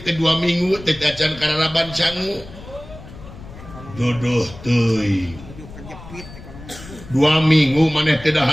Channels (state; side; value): noise; left; rumble, 16 dB below the sound